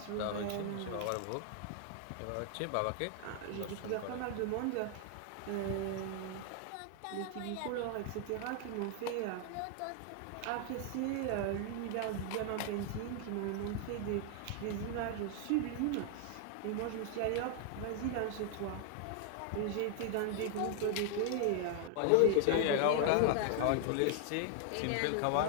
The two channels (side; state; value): both; different; correlation 0.00